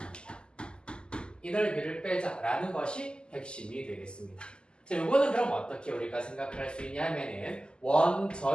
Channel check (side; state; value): right; late; 0.049 ms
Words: 이 넓이를 빼자라는 것이 핵심이 되겠습니다. 자, 요거는 그럼 어떻게 우리가 생각을 할 수 있냐 하면은 원